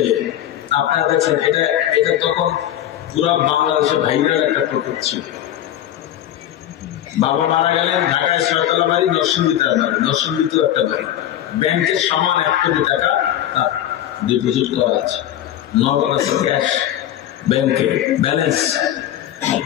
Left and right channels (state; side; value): quieter; right; 11.8 dB